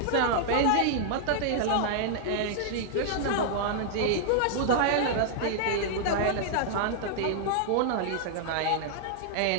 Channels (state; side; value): different; both; correlation -0.01